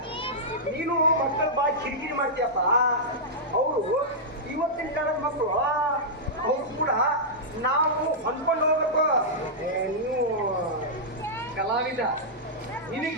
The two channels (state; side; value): normal; both; correlation -0.10